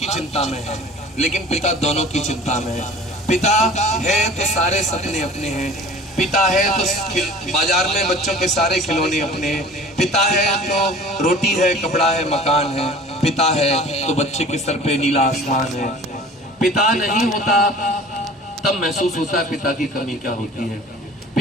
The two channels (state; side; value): normal; both; correlation 0.44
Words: चिंता में है, लेकिन पिता दोनों की चिंता में है। पिता है तो सारे सपने अपने हैं, पिता है तो बाजार में बच्चों के सारे खिलौने अपने हैं, पिता है तो रोटी है, कपड़ा है, मकान है, पिता है तो बच्चे के सर पे नीला आसमान है। पिता नहीं होता तब महसूस होता है पिता की कमी क्या होती है।